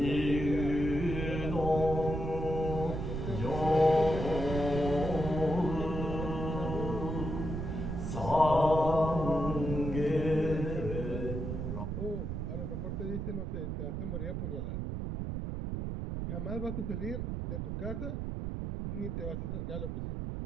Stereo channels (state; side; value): noise; right; rumble, 3 dB below the sound